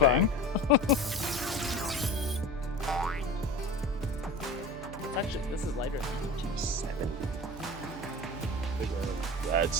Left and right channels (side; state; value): right; noise; hum, 15 dB below the sound